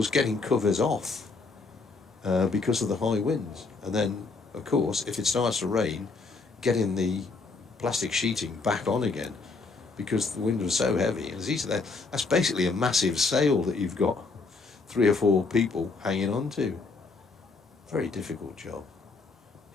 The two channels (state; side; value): quieter; right; 4.1 dB